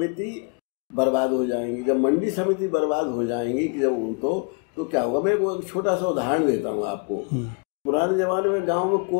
बर्बाद हो जाएंगी। जब मंडी समिति बर्बाद हो जाएंगी कि जब तो क्या होगा, मैं एक छोटा सा उदाहरण देता हूँ आपको। पुराने जमाने में गांव में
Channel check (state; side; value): quieter; right; 33.7 dB